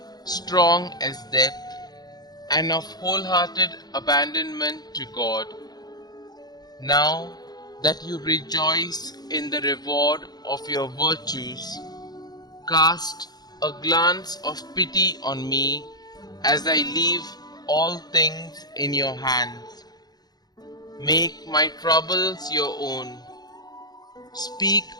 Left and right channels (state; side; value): late; right; 0.19 ms